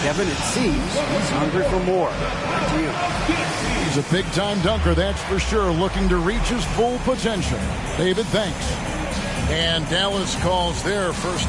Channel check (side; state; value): both; identical; correlation 1.00